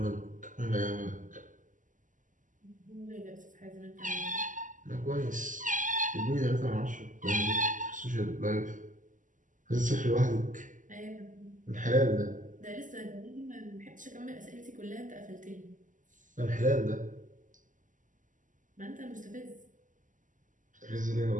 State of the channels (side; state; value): left; late; 0.37 ms